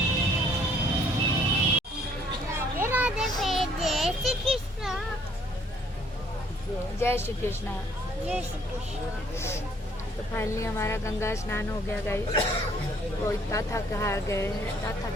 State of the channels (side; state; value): both; normal; correlation 0.62